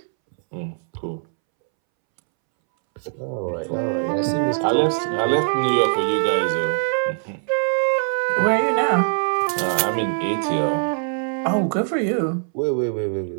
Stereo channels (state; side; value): silent; left; 64 dB below the other